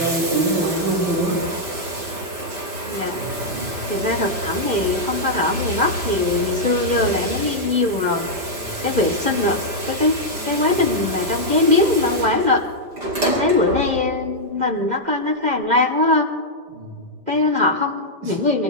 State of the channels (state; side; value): late; left; 5.0 ms